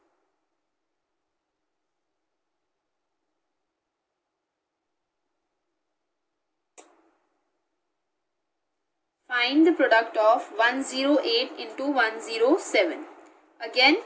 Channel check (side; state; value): both; identical; correlation 1.00